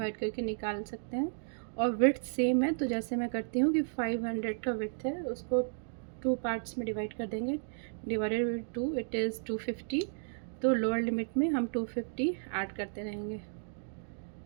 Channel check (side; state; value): left; silent; digital silence